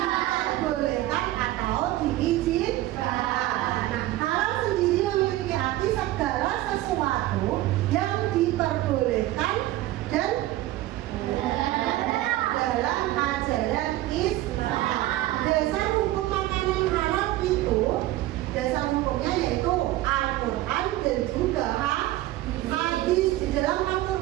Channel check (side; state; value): left; quieter; 16.0 dB